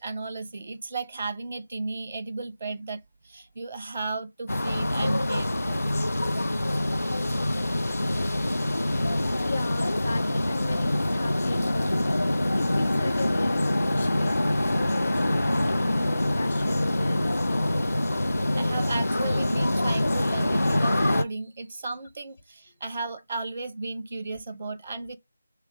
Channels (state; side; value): inverted; both; correlation -0.95